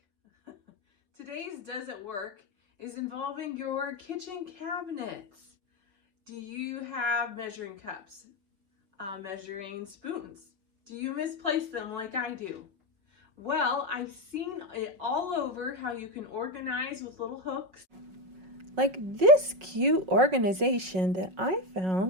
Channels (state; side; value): late; left; 5.4 ms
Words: Today's Does It Work is involving your kitchen cabinets. Do you have measuring cups, measuring spoons? Do you misplace them like I do? Well, I've seen it all over how you can organize with little hooks. Like this cute organization that I